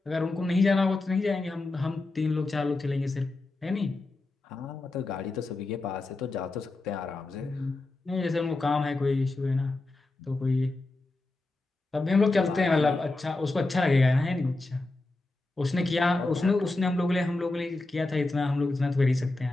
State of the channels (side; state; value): right; quieter; 3.1 dB